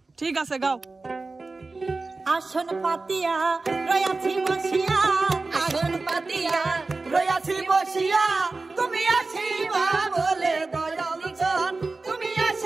ঠিক আছে গাও। আসন পাতিয়া রয়াছি বসিয়া, আসন পাতিয়া রয়াছি বসিয়া, তুমি আসিবা বলে দয়াল চান, তুমি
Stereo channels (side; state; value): left; quieter; 3.6 dB